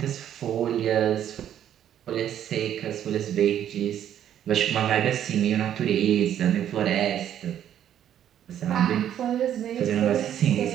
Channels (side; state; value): left; quieter; 10.4 dB